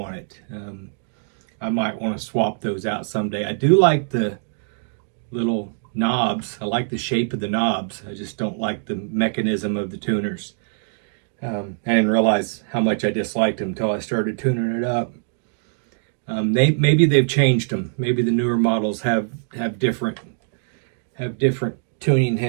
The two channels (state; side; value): silent; left; digital silence